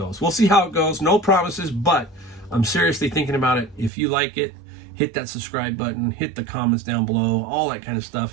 We'll see how it goes. No promises, but I'm seriously thinking about it. If you like it, hit that subscribe button, hit the comments down below, all that kind of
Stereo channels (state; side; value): drops out; left; at 3.9 s